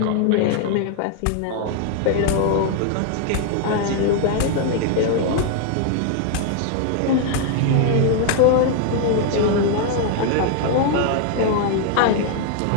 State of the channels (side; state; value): both; different; correlation 0.00